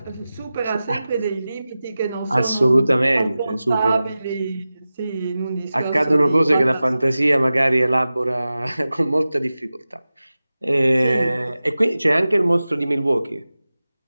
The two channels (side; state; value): both; inverted; correlation -0.95